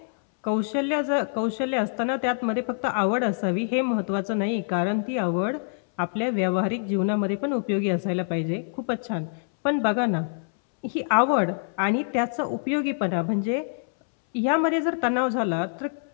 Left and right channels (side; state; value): right; silent; 61 dB below the other